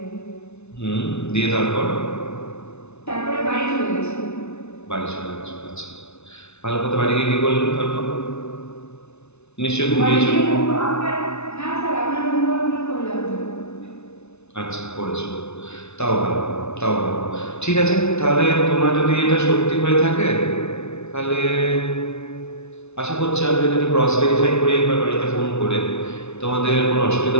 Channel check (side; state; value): right; late; 0.81 ms